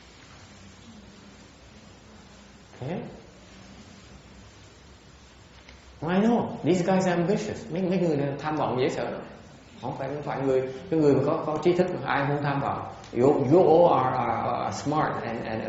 Okay? I know, these guys are ambitious. Mấy người này tham vọng dễ sợ lắm. Không phải người mà có trí thức mà ai không tham vọng. You all are smart and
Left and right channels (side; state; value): both; identical; correlation 1.00